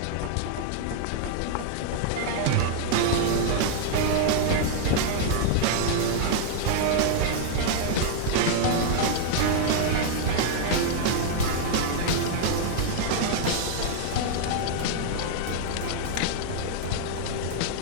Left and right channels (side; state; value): both; different; correlation -0.01